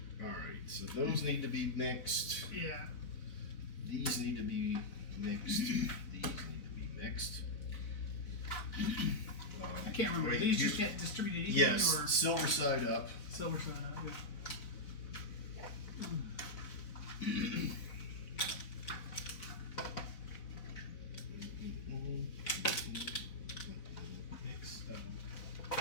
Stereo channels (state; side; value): late; right; 4.0 ms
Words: All right. So those need to be mixed. Yeah. These need to be mixed. These need to be mixed. I can't remember. Wait, These you- just get distributed equally Yes, or silver side up. silver side up? Yeah.